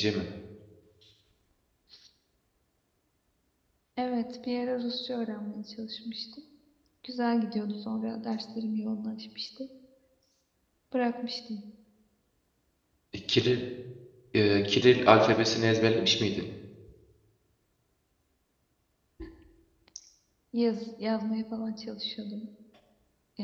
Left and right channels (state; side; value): identical; both; correlation 1.00